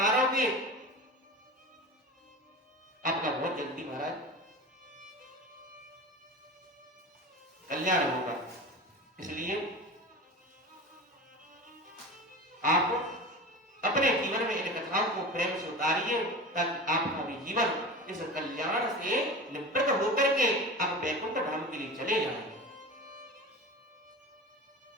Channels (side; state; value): both; normal; correlation 0.31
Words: आपका बहुत जल्दी महाराज कल्याण होगा। इसलिए आप अपने जीवन में इन कथाओं को प्रेम से उतारिए, ताकि आपका भी जीवन इस कल्याण से निवृत्त होकर के आप वैकुंठ धाम के लिए चले जाएंगे।